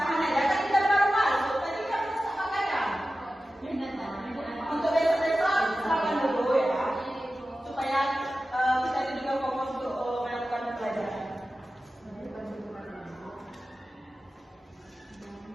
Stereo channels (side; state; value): both; normal; correlation 0.94